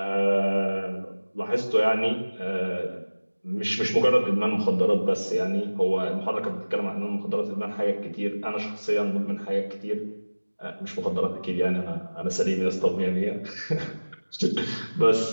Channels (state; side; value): inverted; both; correlation -1.00